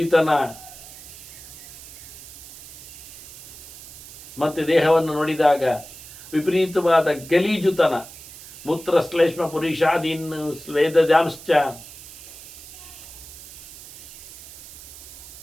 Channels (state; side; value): noise; right; hiss, 16 dB below the sound